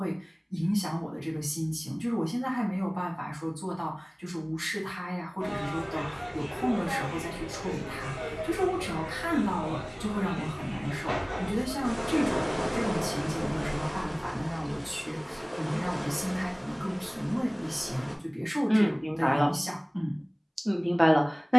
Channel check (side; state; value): both; identical; correlation 1.00